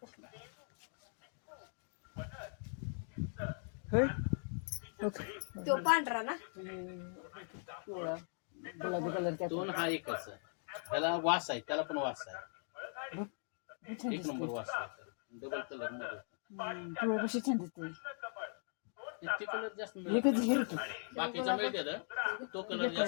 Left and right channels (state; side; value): silent; right; 51 dB below the other